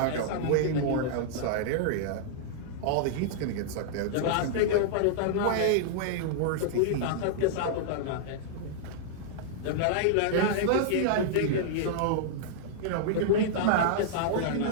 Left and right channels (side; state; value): both; different; correlation -0.02